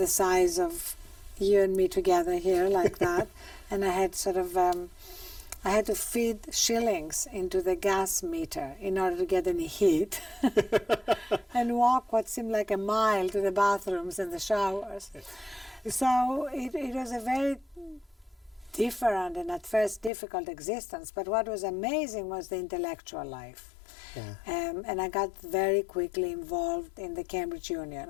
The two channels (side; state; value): right; drops out; at 20.1 s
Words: size of you and me together here, like that. And I had sort of, I had to feed shillings into the gas meter in order to get any heat and walk what seemed like a mile to the bathrooms and the showers. So it was a very different and at first difficult existence, but what was amazing was the intellectual life. Yeah. And I got very quickly involved in the Cambridge Union,